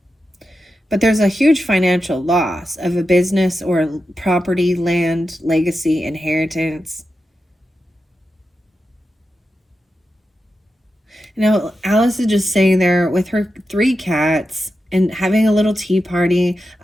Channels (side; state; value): both; normal; correlation 0.90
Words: But there's a huge financial loss of a business or property, land, legacy, inheritance. You know, Alice is just sitting there with her 3 cats and having a little tea party,